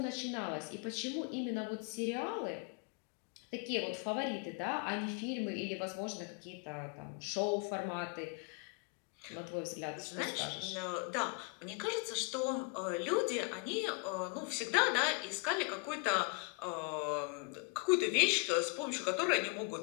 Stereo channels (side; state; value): right; quieter; 32.0 dB